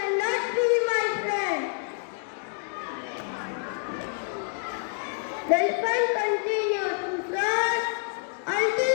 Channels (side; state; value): right; silent; 60 dB below the other